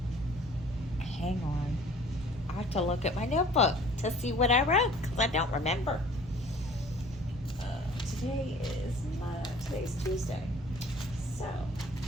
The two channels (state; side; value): normal; both; correlation 0.50